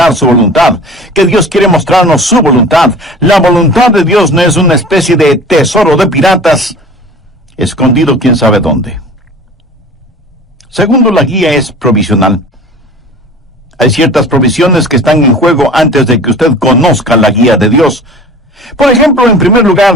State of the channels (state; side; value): normal; both; correlation 0.41